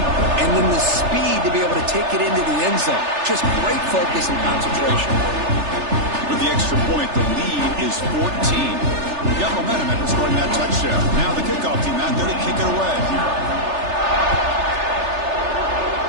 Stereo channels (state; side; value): late; left; 3.3 ms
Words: then the speed to be able to take it into the end zone. Just great focus and concentration. With the extra point, the lead is 14. We got momentum after scoring that touchdown. Now the kickoff team out there to kick it away.